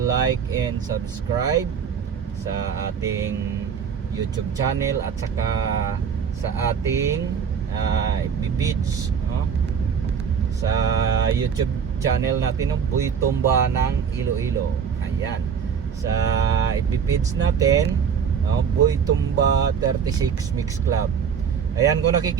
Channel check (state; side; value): quieter; left; 7.0 dB